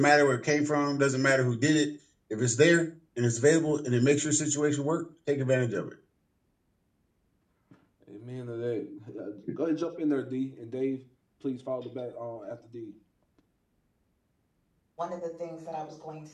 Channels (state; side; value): identical; both; correlation 1.00